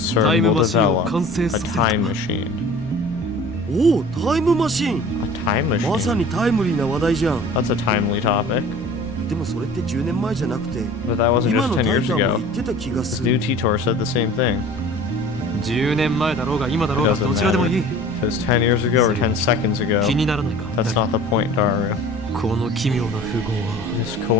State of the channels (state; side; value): noise; right; rumble, 17 dB below the sound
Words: will develop 完成 a させる。 time machine. おお、タイムマシーン。 A time まさ machine? にタイムリーな話題じゃん。 That's a timely topic. でもそれって10年前じゃなくて But that wasn't 今 just の 10タイ years ターも ago. 言ってた気が This す new る。 Titor said the same thing. 10年前だろうが今だ It ろうが doesn't どちらでも matter. いい。 If it's 10 years ago or 10 seconds ago, 気にならないか。 that's not the point, Daru. この奇妙な符号は This シ